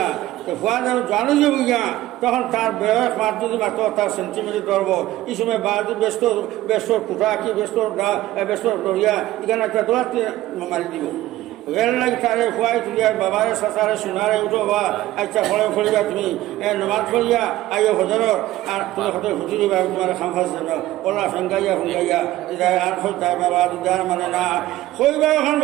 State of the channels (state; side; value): quieter; left; 15.8 dB